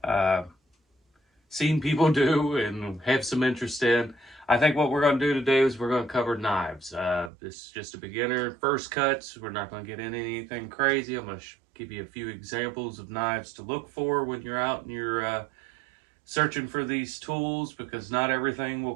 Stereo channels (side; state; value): left; drops out; at 7.3 s